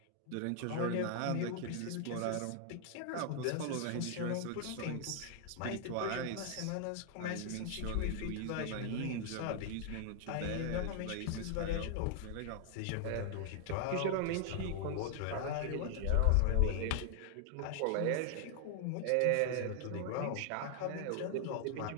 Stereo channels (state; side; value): different; both; correlation 0.00